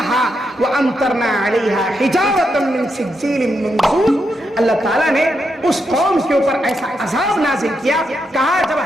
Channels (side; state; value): both; normal; correlation 0.82